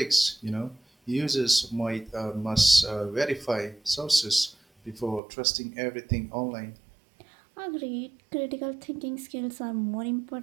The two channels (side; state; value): left; drops out; at 5.2 s